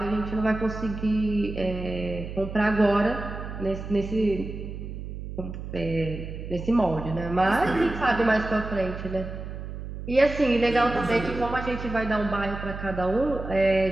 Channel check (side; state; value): right; noise; hum, 8 dB below the sound